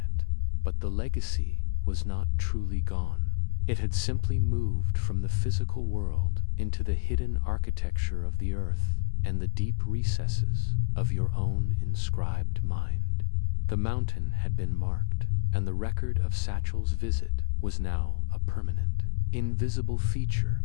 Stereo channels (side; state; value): right; silent; 59 dB below the other